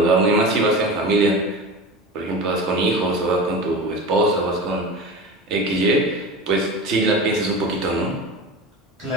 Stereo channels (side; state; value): both; normal; correlation 0.31